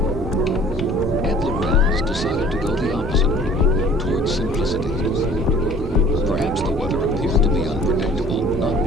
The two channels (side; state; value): both; normal; correlation 0.50